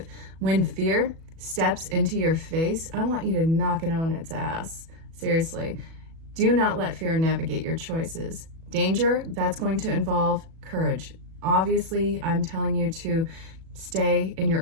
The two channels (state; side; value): late; left; 37 ms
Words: When fear steps into your face, I want you to knock it on its ass. Seriously. Do not let fear navigate your choices. Danger, that's going to involve courage. Obviously, I'm telling you to stay in